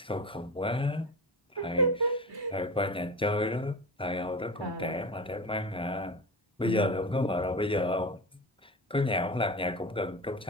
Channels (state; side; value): normal; both; correlation 0.29